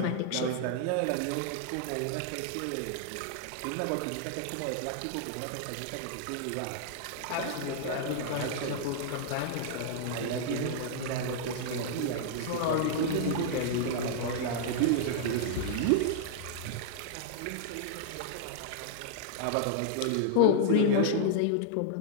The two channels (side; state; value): both; different; correlation -0.01